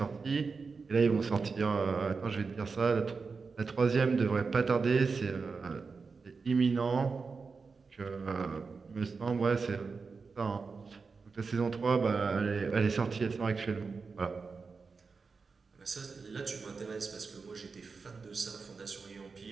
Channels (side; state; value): left; quieter; 4.7 dB